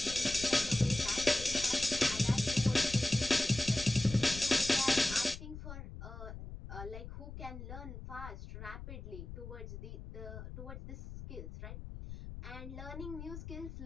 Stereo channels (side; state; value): left; noise; rumble, 11 dB below the sound